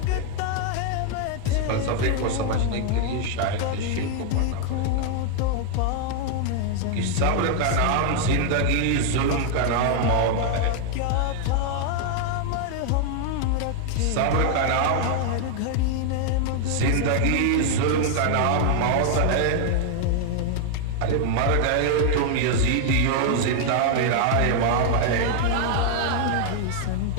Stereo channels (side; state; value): both; different; correlation 0.00